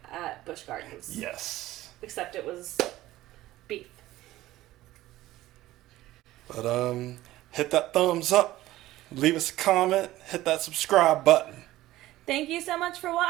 at Busch Gardens. Yes. Except it was beef. But hit that thumbs up, leave us a comment, hit that subscribe button. Thank you so much for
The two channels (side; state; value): left; quieter; 16.0 dB